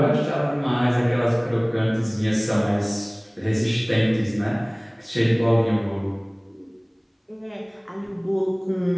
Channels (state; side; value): identical; both; correlation 1.00